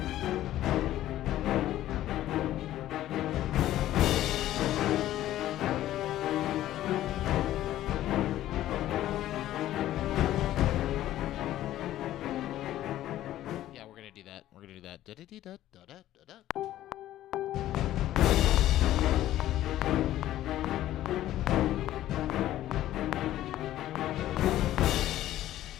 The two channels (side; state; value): right; quieter; 13.6 dB